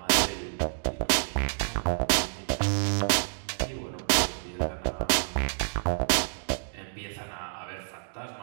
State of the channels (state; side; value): silent; left; digital silence